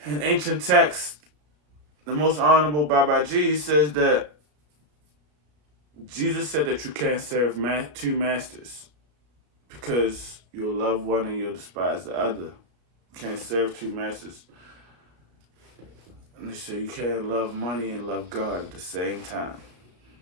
In ancient texts, the most honorable Babaji says that Jesus said that you can't serve two masters, because you'll love one and you'll despise the other. You can't serve two masters. And they say you can't love money and love God at the same time.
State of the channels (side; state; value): left; late; 33 ms